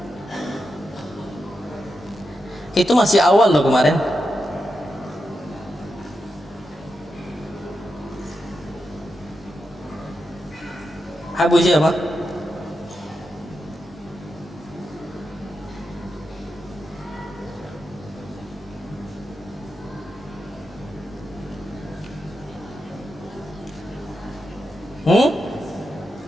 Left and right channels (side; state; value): both; normal; correlation 0.87